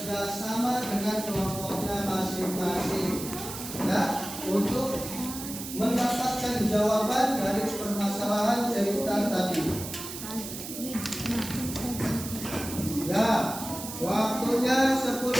sama dengan kelompoknya masing-masing ya, untuk mendapatkan jawaban dari permasalahan cerita tadi. Ya, waktunya 10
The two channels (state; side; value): noise; right; hiss, 9 dB below the sound